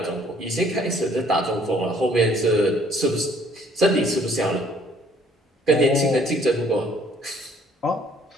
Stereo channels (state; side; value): normal; both; correlation 0.60